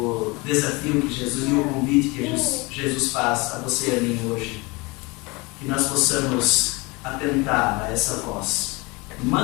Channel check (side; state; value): right; quieter; 25.7 dB